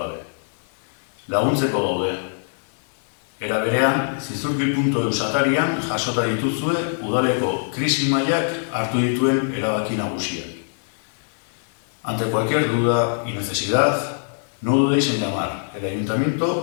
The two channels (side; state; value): right; silent; digital silence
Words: Laguntzeko gaude. Era berean, zizurkil.eu atarian jasota dituzue udaleko krisi mailak hartu dituen erabaki nagusiak. Ante cualquier duda y necesidad, no dudéis en llamar. El